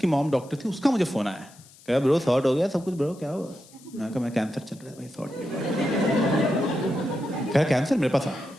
मॉम डॉक्टर थी, उसका मुझे फोन आया। कहा ब्रो सॉर्ट हो गया सब कुछ ब्रो, क्या हुआ? मैं कहा मैं कैंसर चल रहा है भाई, सॉर्ट नहीं हुआ। कह कैंसर मेरे पास आ,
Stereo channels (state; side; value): noise; left; hiss, 24 dB below the sound